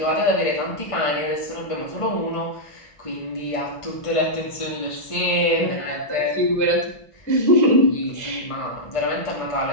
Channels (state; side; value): late; right; 1.5 ms